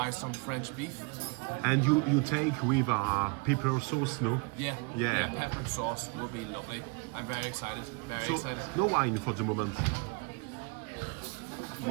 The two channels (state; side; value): quieter; left; 29.7 dB